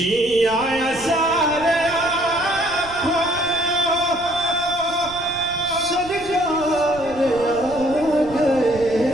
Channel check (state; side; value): noise; right; rumble, 18 dB below the sound